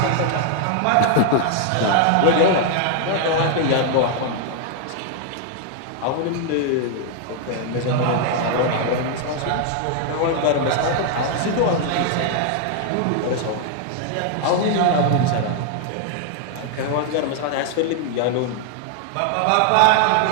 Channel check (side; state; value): both; different; correlation 0.00